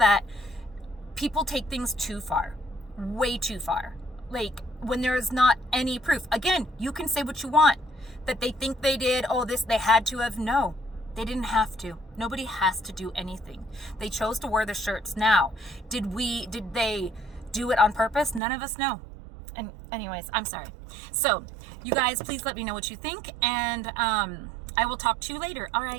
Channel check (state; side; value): drops out; left; at 18.4 s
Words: people take things too far. Way too far. Like, when there is not any proof. Again, you can say what you want. That they think they did, they had to have. No, they didn't have to. Nobody has to do anything. They chose to wear the shirts. Now, did they do it on purpose? None of us know. And anyways, I'm sorry. So, you guys, please let me know what you think, and I will talk to you later. All